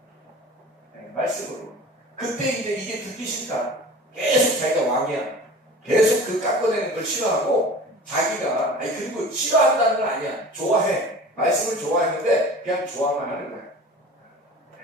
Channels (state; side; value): normal; both; correlation 0.39